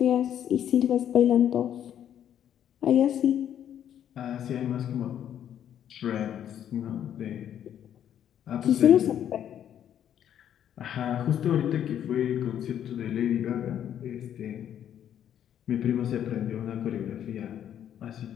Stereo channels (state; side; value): quieter; right; 10.0 dB